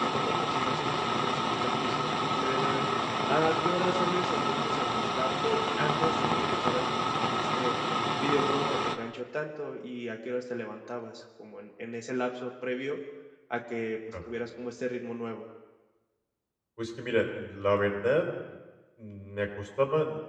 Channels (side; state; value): both; identical; correlation 1.00